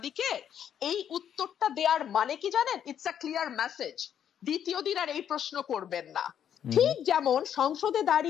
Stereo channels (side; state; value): right; quieter; 9.2 dB